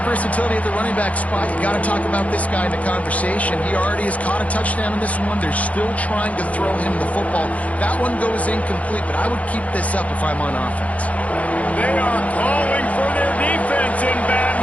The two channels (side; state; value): right; late; 0.066 ms